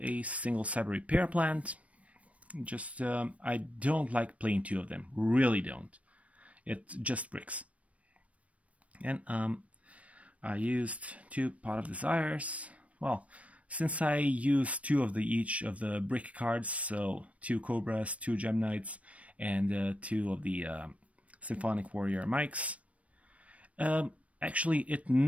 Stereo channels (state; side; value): late; left; 0.065 ms